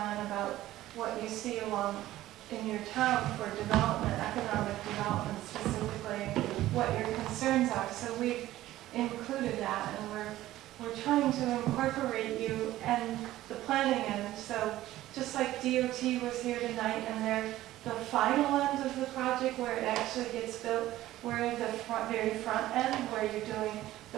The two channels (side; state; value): left; quieter; 15.1 dB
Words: about what you see along in your town for development, economic development specifically, what your concerns are. So we've included that, and we're trying to incorporate you and the planning end. So just like DOT was here tonight, and they're the final end of the project where it actually gets built, we're the very front end where you're doing the